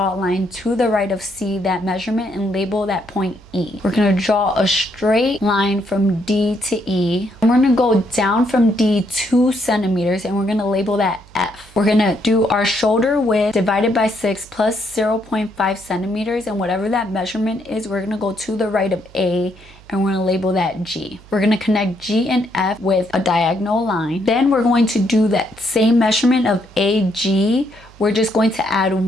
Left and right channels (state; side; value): noise; right; hum, 23 dB below the sound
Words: a line to the right of C, that measurement, and label that point E. We're going to draw a straight line from D to E. And we're going to go down from D 2 centimeters, and we're going to label that F. We're going to do our shoulder width divided by 6 plus 0.5 centimeters, and whatever that measurement is, we're going to go to the right of A, and we're going to label that G. We're going to connect G and F with a diagonal line. Then we're going to do that same measurement of AG. We're just going to add